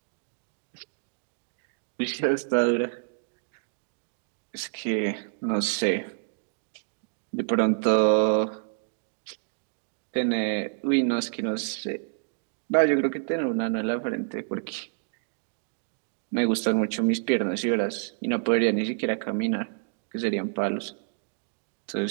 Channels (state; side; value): silent; left; digital silence